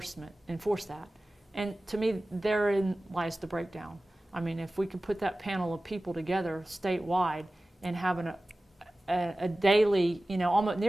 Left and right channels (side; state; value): both; normal; correlation 0.97